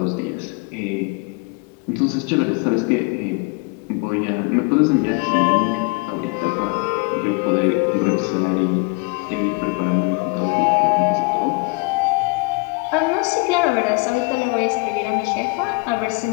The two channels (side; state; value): right; quieter; 29.8 dB